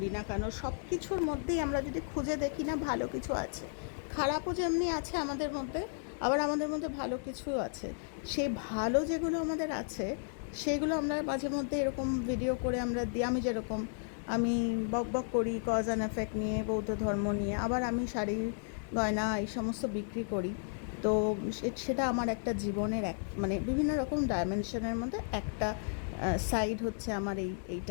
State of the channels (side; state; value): right; silent; digital silence